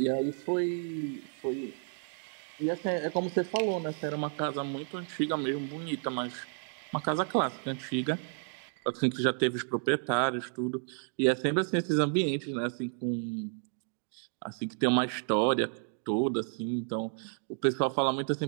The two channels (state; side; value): silent; left; 57 dB below the other